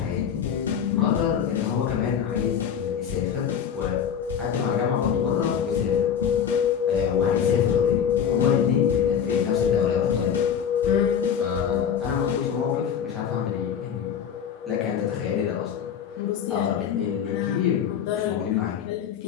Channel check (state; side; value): quieter; right; 8.1 dB